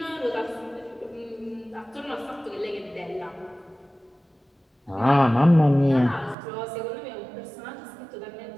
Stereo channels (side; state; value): left; drops out; at 6.4 s